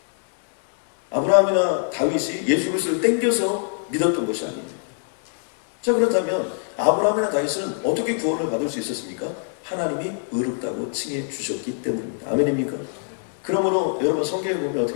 아브라함이나 다윗이 예수 그리스도를 땡겨서 믿었던 것이 아니에요. 자, 그렇다면 아브라함이나 다윗은 어떻게 구원을 받을 수 있었습니까? 하나님이 의롭다고 칭해 주셨기 때문입니다. 아멘입니까? 그러므로 여러분 성경에 보면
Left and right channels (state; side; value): silent; right; digital silence